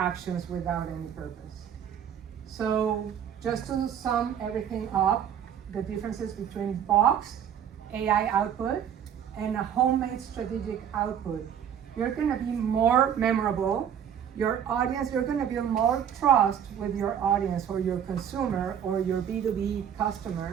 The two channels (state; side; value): quieter; left; 8.9 dB